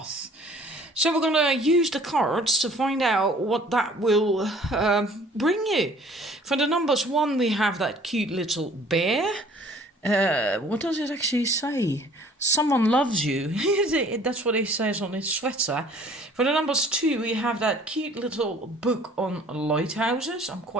So we're going to use the cards to find out what that will bring you. For the numbers 1, we have that cute little bear. What does it actually say? Someone loves you. That's what it says on his sweater. For the numbers 2, we have that cute little book on lighthouses. I'm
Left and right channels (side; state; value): both; normal; correlation 0.53